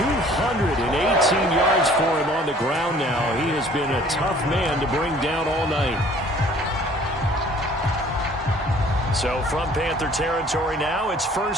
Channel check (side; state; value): both; normal; correlation 0.54